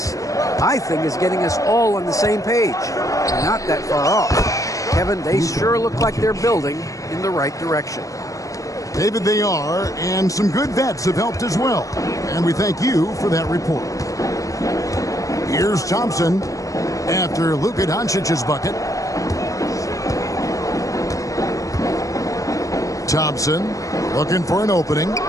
My thing is getting us all on the same page. We're not that far off. Kevin, they sure look like they're building in the right direction. David, they are, and some good vets have helped as well. And we thank you for that report. Here's Thompson after Luka Doncic's bucket. Thompson looking for an opening.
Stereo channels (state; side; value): late; right; 0.16 ms